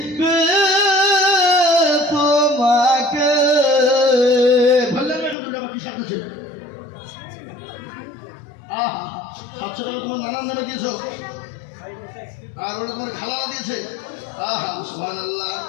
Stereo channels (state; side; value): drops out; right; at 5.4 s